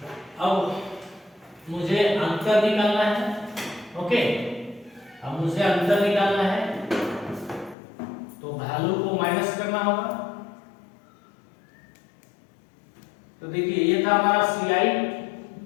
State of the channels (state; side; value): drops out; right; at 7.8 s